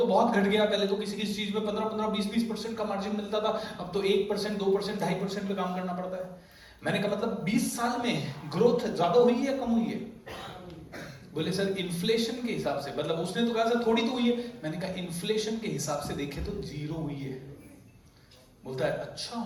बहुत घट गया, पहले तो किसी किसी चीज में 15-15, 20-20% का मार्जिन मिलता था, अब तो 1%, 2%, 2.5% पे काम करना पड़ता है। मैंने कहा मतलब 20 साल में ग्रोथ ज्यादा हुई है या कम हुई है? बोले सर इन्फ्लेशन के हिसाब से, मतलब उसने तो कहा सर थोड़ी तो हुई है। मैंने कहा इन्फ्लेशन के हिसाब से देखे तो 0 हुई है। बोलता है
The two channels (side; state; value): both; identical; correlation 1.00